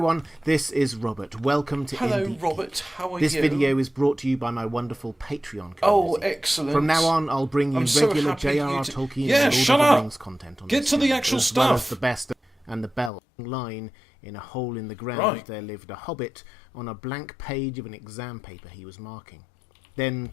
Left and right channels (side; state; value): right; drops out; at 13.1 s